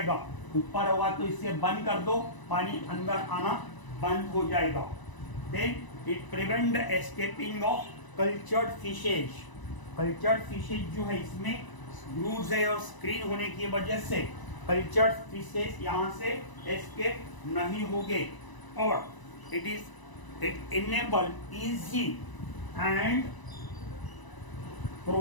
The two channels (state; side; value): late; right; 1.0 ms